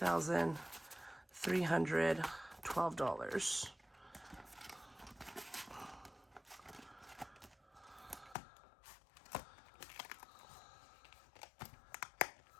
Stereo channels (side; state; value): right; drops out; at 8.3 s